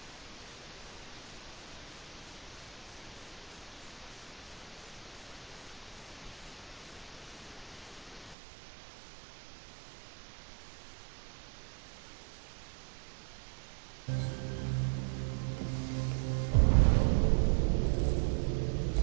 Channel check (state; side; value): drops out; left; at 8.3 s